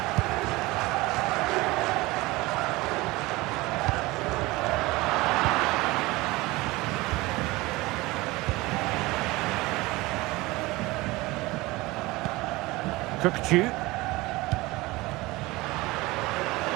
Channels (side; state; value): left; quieter; 21.1 dB